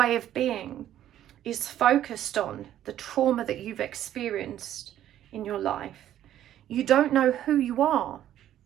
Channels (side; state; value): left; quieter; 11.8 dB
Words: of being is focused on the trauma that you've experienced in your life. You don't know who you are